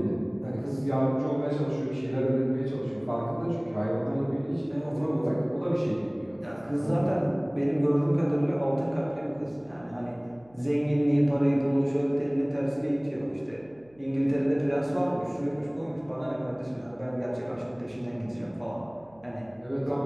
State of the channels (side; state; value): right; noise; hum, 29 dB below the sound